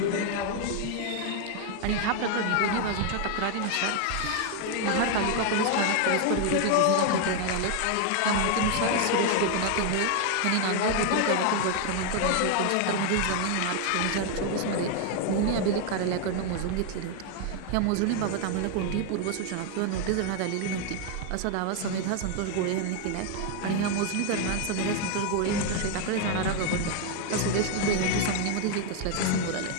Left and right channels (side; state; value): both; different; correlation 0.00